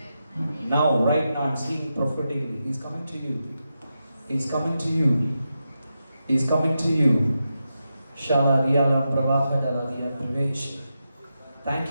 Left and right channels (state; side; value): inverted; both; correlation -0.88